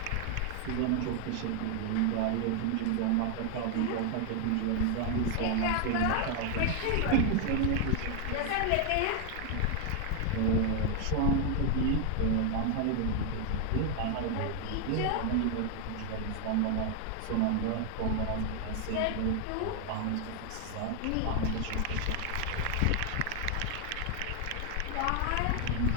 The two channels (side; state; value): both; different; correlation 0.00